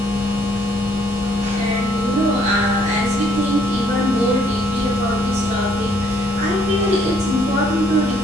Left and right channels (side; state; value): both; normal; correlation 0.66